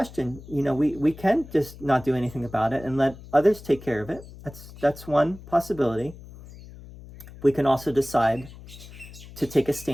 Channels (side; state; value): left; noise; hum, 17 dB below the sound